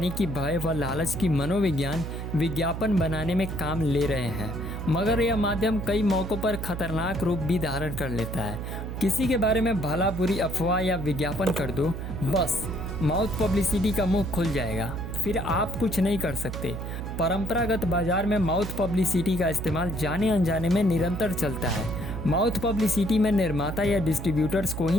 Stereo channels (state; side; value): noise; right; hum, 6 dB below the sound